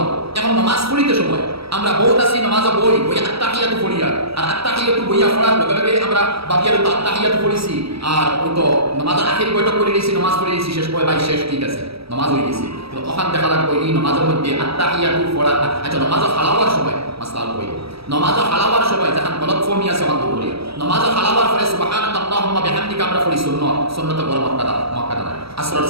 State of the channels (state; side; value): late; left; 0.76 ms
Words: এখন নমাজ পড়িতে সময় আমরা বহুত আছি নমাজে বই আত্তাহিয়াতু পড়িয়া আর আত্তাহিয়াতু বইয়া পড়ার লগে লগে আমরা বাকিয়ার তো আত্তাহিয়াতু পড়িছি আর ওই তো নমাজের আখির বইটা করে নিয়েছি নমাজ পড়ে নিয়েছি শেষ করে ভাই শেষ ঠিক আছে নমাজ হয়ে গেছে তো ওখান দেখা লাগবে এই নমাজের মধ্যে আত্তাহিয়াতু পড়া আচ্ছা নমাজে হালাওয়ার সময় মাসলাল বই নমাজে হালাওয়ার সময় যখন গলত ফর্মি আছে অন্ত করি নমাজে হালাওয়ার পরে সুবহানাকা আল্লাহুম্মা বিহামদিকা আমরা পড়ি সুন্নাত বড় মক্কাদা আসরের